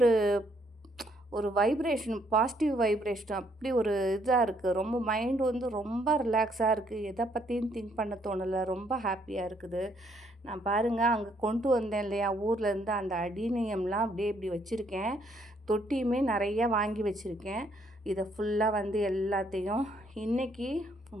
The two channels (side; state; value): both; normal; correlation 0.69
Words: ஒரு வைப்ரேஷன், பாசிட்டிவ் வைப்ரேஷன் அப்படி ஒரு இதாக இருக்குது. ரொம்ப மைண்டு வந்து ரொம்ப ரிலாக்ஸாக இருக்குது. எதை பற்றியும் திங்க் பண்ண தோணலை, ரொம்ப ஹாப்பியாக இருக்குது. நான் பாருங்கள், அங்கே கொண்டு வந்தேன் இல்லையா ஊர்லேருந்து, அந்த அடினியம்லாம் அப்படியே இப்படி வச்சுருக்கேன். தொட்டியுமே நிறையா வாங்கி வச்சுருக்கேன். இதை ஃபுல்லாக வந்து எல்லாத்தையும் இன்றைக்கி